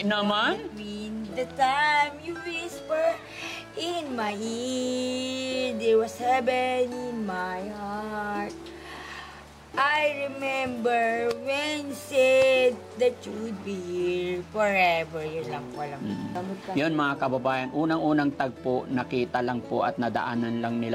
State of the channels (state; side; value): identical; both; correlation 1.00